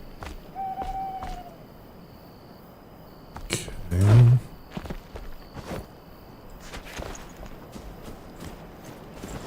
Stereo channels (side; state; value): both; identical; correlation 1.00